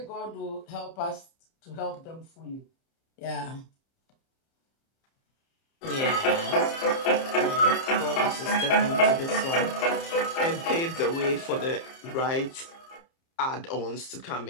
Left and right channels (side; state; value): right; late; 30 ms